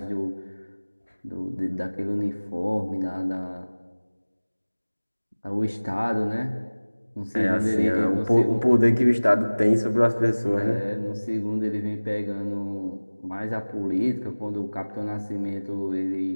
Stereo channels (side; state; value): both; inverted; correlation -1.00